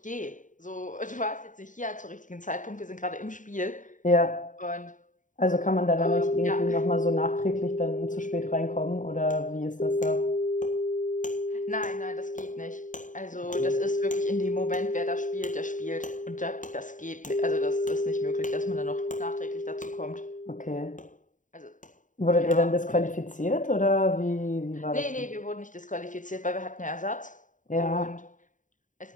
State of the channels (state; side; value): late; right; 0.37 ms